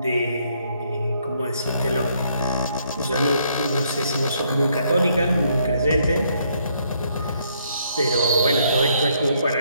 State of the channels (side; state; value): both; inverted; correlation -0.70